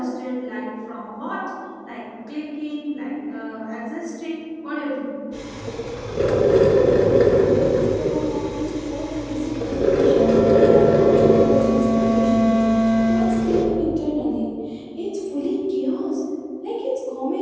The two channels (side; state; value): both; identical; correlation 1.00